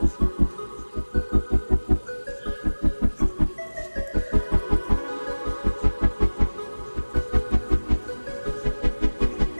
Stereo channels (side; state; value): both; inverted; correlation -1.00